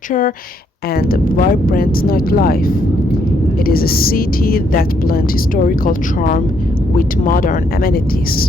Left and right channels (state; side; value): normal; both; correlation 0.72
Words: and vibrant nightlife. It is a city that blends historical charm with modern amenities.